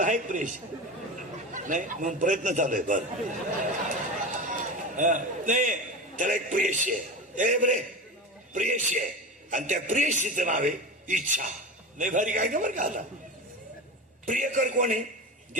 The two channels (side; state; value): both; normal; correlation 0.26